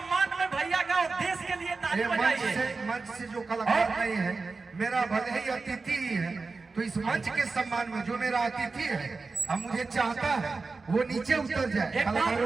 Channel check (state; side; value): quieter; left; 4.1 dB